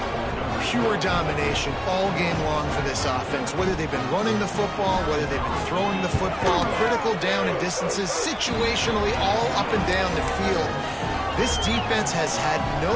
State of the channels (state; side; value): identical; both; correlation 1.00